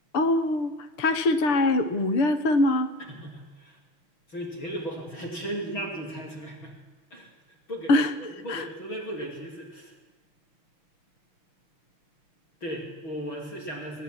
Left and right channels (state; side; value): late; right; 6.8 ms